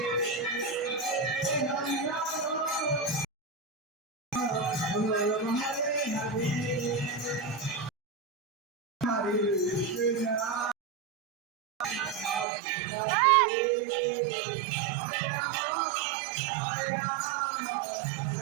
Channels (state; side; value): drops out; left; at 12.5 s